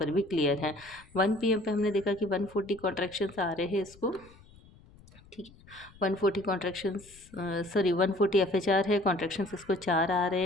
भी क्लियर है। 1 PM पे हमने देखा कि 140 कॉन्ट्रैक्शंस आ रहे हैं इसको। ठीक है, 140 कॉन्ट्रैक्शंस 140 FHR है। कॉन्ट्रैक्शंस इसको 4 आ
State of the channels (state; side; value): noise; left; rumble, 24 dB below the sound